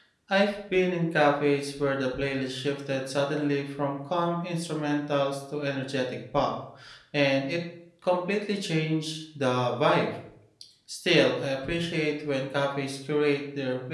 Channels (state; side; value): identical; both; correlation 1.00